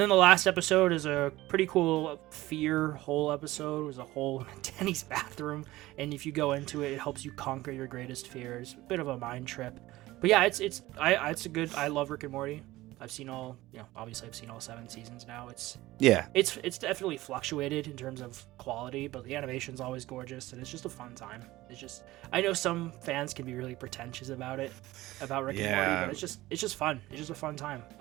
then the last episode is a pretty cool fear hole episode. It was a hole in Denny's bathroom, and if you go into it, it helps you conquer your greatest fears. A bit of a mind trip, but yeah, it's a good. I love Rick and Morty. I've seen all 7 seasons now. It's definitely fluctuated in terms of quality, but the animation's always gorgeous, and it's just a fun time. I know some fans can be really pretentious about Rick and Morty, but it's just fun. It's just a fun time.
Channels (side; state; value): left; quieter; 17.7 dB